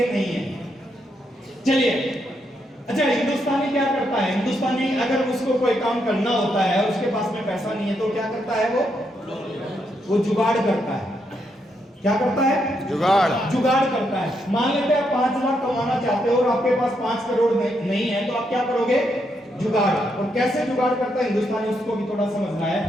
नहीं है। चलिए, अच्छा, हिंदुस्तानी क्या करता है? हिंदुस्तानी अगर उसको कोई काम करना होता है और उसके पास में पैसा नहीं है, तो क्या करता है? वो जुगाड़ करता है। क्या करता है? जुगाड़ करता है। मान लेते हैं 5 लाख कमाना चाहते हो और आपके पास 5 करोड़ नहीं है, तो आप क्या करोगे? जुगाड़। और कैसे जुगाड़ करता है हिंदुस्तानी, उसको भी थोड़ा समझना है।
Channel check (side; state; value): both; normal; correlation 0.79